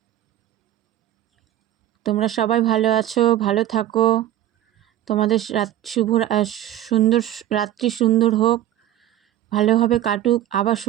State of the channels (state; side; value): quieter; left; 12.8 dB